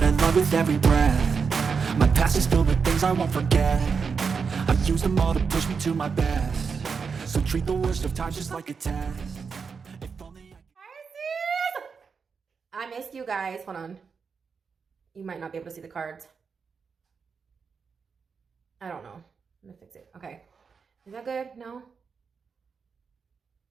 I love with every breath. My past is filled with things I won't forget. I've used them all to push me to my best. So treat the worst of times just like a test. If only Pisces! I missed you guys. Hold on. You might not be able to see the cards. I don't know. I'm gonna fix it. Okay. Is that good? No?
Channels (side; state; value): left; quieter; 5.6 dB